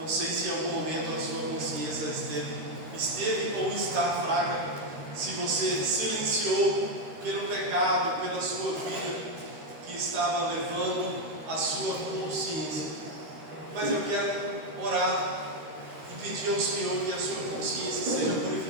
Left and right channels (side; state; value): left; late; 13 ms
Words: sei se em algum momento a sua consciência esteve ou está fraca, se você silenciou pelo pecado, pela sua vida que estava levando a sua consciência. Mas eu quero orar e pedir ao Senhor que a sua consciência seja